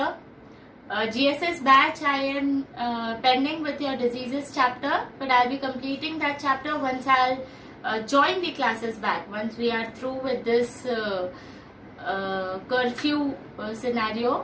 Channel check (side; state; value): both; identical; correlation 1.00